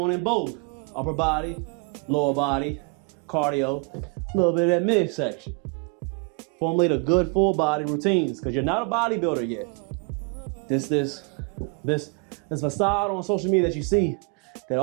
in both upper body, lower body, cardio, a little bit of that midsection. Formulate a good full body routines because you're not a bodybuilder yet. This facade on social media that you see that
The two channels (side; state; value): left; quieter; 35.2 dB